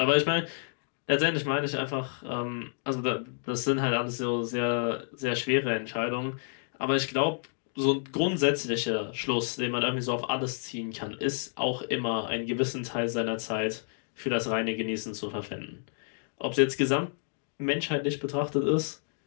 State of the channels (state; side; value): silent; right; digital silence